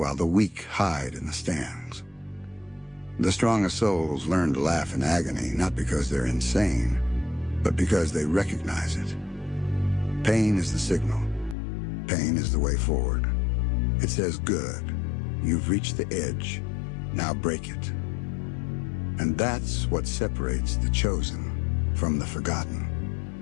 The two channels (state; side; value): drops out; right; at 11.6 s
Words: the weak hide in the stands. The strongest souls learn to laugh in agony, not because they're insane, but because they recognize it. Pain is the signal. Pain is the way forward. It says, good, you've reached the edge, now break it. And that's what separates the chosen from the